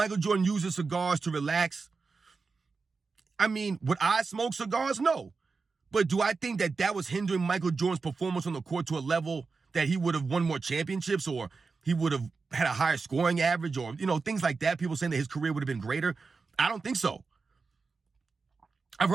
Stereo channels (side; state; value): left; quieter; 4.5 dB